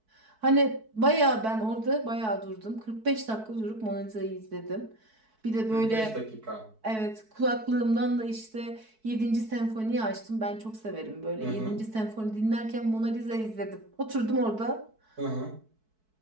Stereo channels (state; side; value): late; left; 4.6 ms